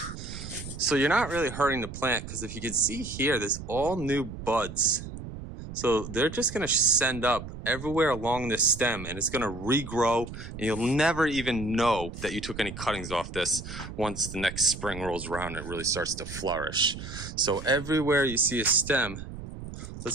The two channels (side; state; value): right; noise; rumble, 10 dB below the sound